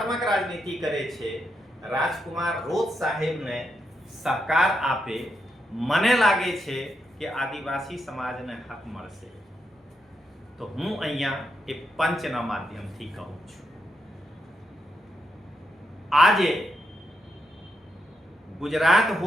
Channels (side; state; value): both; normal; correlation 0.82